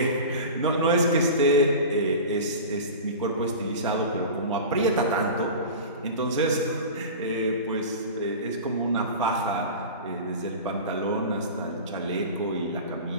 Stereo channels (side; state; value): both; inverted; correlation -0.32